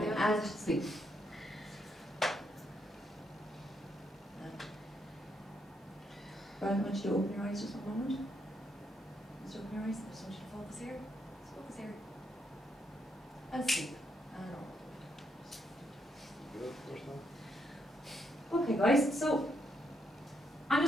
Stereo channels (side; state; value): both; normal; correlation 0.77